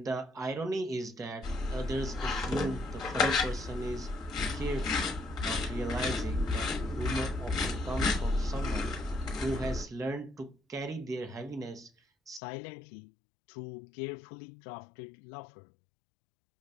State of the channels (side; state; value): right; drops out; at 12.4 s